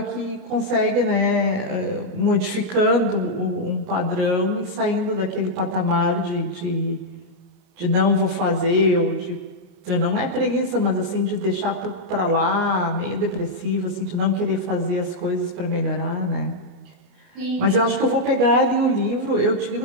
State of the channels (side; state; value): left; late; 29 ms